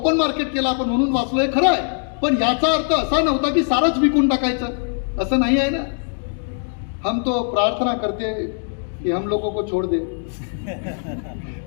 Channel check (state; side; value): silent; right; 65 dB below the other